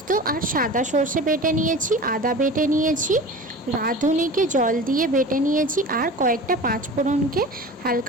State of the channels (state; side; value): normal; both; correlation 0.35